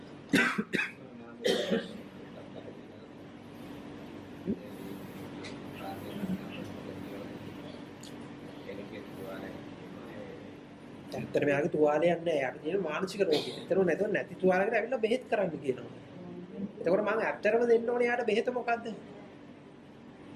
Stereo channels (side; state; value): both; identical; correlation 1.00